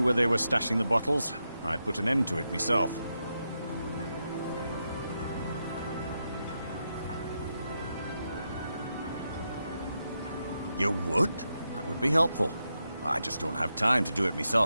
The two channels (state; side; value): inverted; both; correlation -0.86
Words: where they were stashing the bottles, I'd put an end to it myself. You would? That would be helpful. I just don't have time to do it